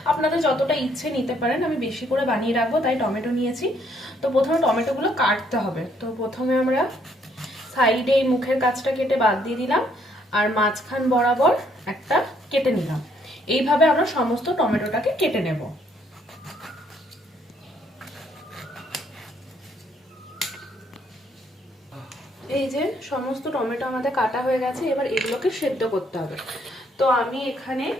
আপনাদের যতটা ইচ্ছে নিতে পারেন, আমি বেশি করে বানিয়ে রাখবো তাই টমেটো নিয়েছি। তো প্রথমে টমেটোগুলো কাটতে হবে। তো প্রথমে আমরা সাইডে এই মুখের কাছটা কেটে বাদ দিয়ে দিলাম, আর মাঝখান বরাবর একটা কেটে নিলাম। এইভাবে আমরা সমস্ত টমেটোটাকে কেটে নেব। এই যে সমস্ত টমেটো আমাদের কাটা হয়ে গেছে, এবার এগুলোকে সেদ্ধ করতে হবে। তো আমি এখানে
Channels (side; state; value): both; normal; correlation 0.68